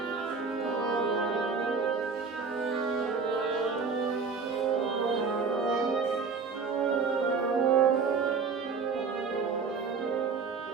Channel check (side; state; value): left; quieter; 5.1 dB